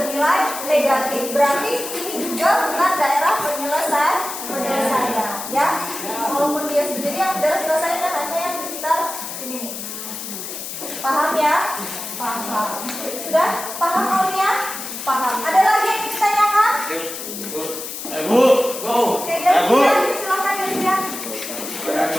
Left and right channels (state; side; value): noise; left; hiss, 8 dB below the sound